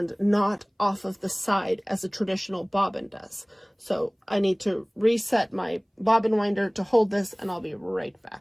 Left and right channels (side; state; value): both; identical; correlation 1.00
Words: not off of the side as a traditional bobbin does. So I need to reset my bobbin winder to hold this, and I'll be right